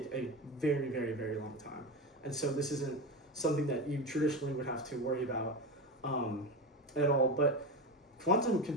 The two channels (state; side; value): normal; both; correlation 0.20